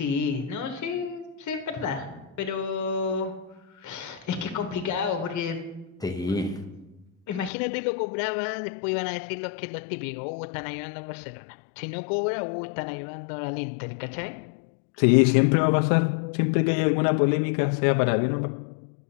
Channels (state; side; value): drops out; right; at 7.5 s